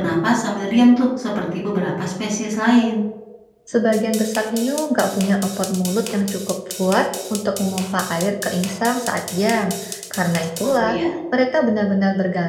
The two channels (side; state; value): both; identical; correlation 1.00